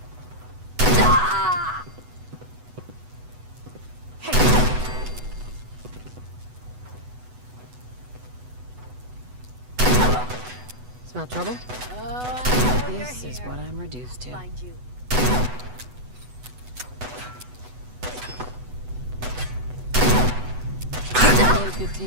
Ah! Hey. Smell trouble? Oh, This is what I'm reduced to. Find you. Really good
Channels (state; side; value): late; left; 8.1 ms